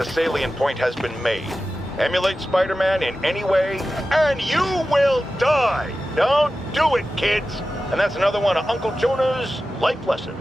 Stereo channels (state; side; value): normal; both; correlation 0.94